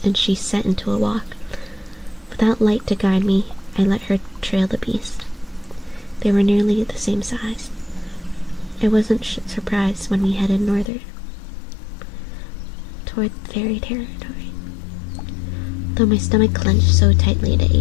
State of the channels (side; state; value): right; drops out; at 10.9 s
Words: she set into a walk. Without light to guide me, I let her trail the beast. They were nearly the same size. I wasn't surprised when we headed northward, toward fairy territory. though my stomach clenched so tightly it